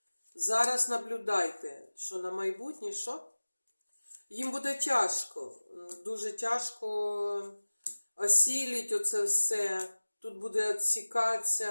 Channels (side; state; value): both; inverted; correlation -1.00